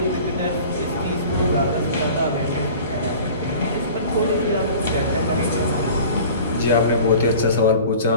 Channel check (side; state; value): both; inverted; correlation -0.43